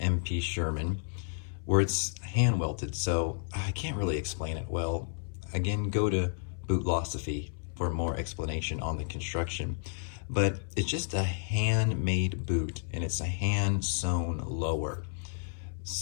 Sherman where it's hand welted, so I can't really explain it well. Again, go to Bootlosophy for more explanation on the construction. But it's just a handmade boot, and it's a hand sewn lower.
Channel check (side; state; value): right; silent; 57 dB below the other